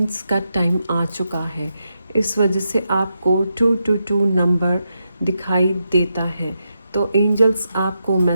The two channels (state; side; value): inverted; both; correlation -0.85